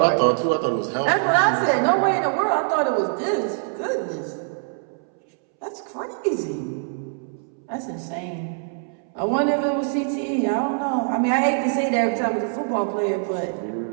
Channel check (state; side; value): silent; left; 63 dB below the other